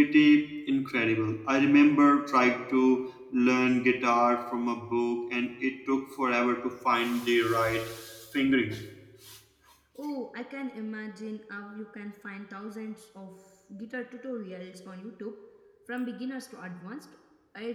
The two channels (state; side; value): identical; both; correlation 1.00